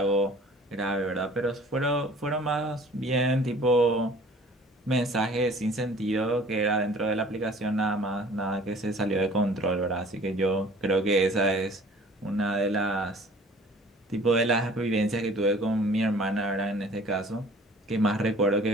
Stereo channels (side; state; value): both; normal; correlation 0.50